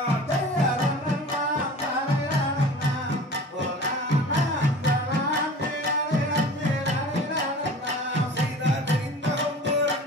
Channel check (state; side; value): normal; both; correlation 0.40